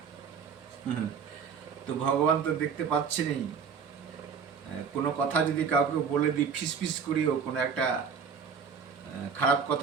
তো ভগবান তো দেখতে পাচ্ছেনই। কোনো কথা যদি কাউকে বলে দিই, ফিসফিস করিও কোনো একটা খারাপ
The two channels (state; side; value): quieter; left; 6.4 dB